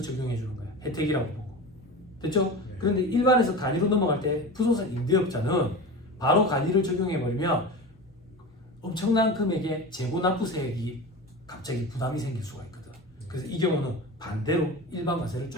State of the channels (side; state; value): both; normal; correlation 0.29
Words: 주는 거야. 혜택이라고 보고. 됐죠? 그런데 일반에서 간이로 넘어갈 때 부동산 임대업자는 바로 간이를 적용해 버리면 엄청난 금액의 재고 납부세액이 갑자기 부담이 생길 수가 있거든. 그래서 이 경우는 반대로 일반 과세를